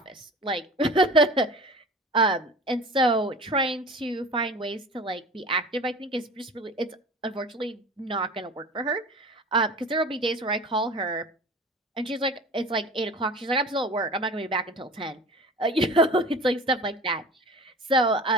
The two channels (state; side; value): normal; both; correlation 0.38